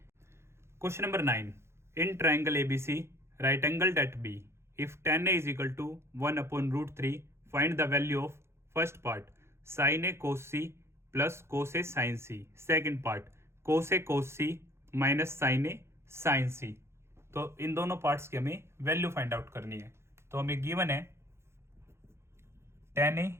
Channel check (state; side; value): late; left; 0.13 ms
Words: Question number 9, in triangle ABC right angled at B if tan a is equal to 1/√3 find the value of first part sin a cos c plus cos a sin c, second part cos a cos c minus sin a sin c। तो इन दोनों parts की हमें value find out करनी है। तो हमें given है tan a